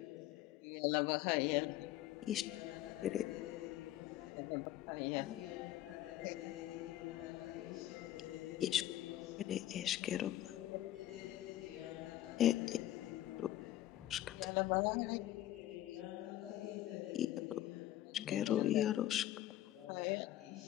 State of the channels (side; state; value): right; quieter; 13.7 dB